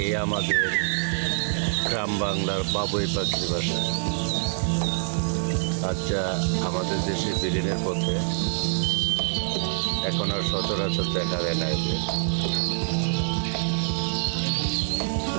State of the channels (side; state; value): left; silent; digital silence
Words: আমাদের গ্রাম বাংলার বাবুই পাখির বাসা। আচ্ছা, আমাদের দেশে বিলীনের পথে এখন আর সচরাচর দেখা যায় না।